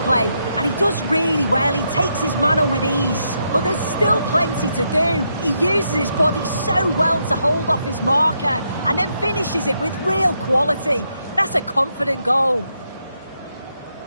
and he does really well. He takes his man on with ease, but there's still plenty to do. He uses his body so well to hold off his marker, and then finishes it with real quality. That's a confident goal.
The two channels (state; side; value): inverted; both; correlation -0.80